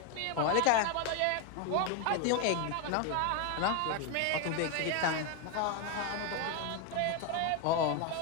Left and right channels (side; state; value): both; different; correlation 0.01